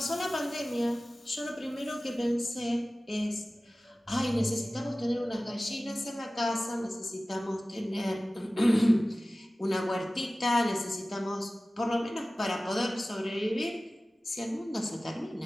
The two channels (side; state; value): both; normal; correlation 0.97